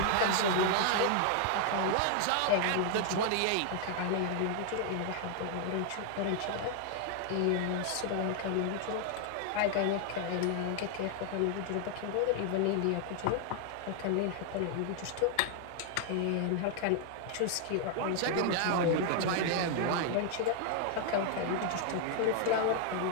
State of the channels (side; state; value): both; different; correlation 0.00